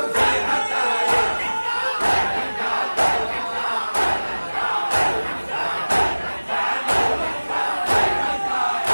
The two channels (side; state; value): both; inverted; correlation -1.00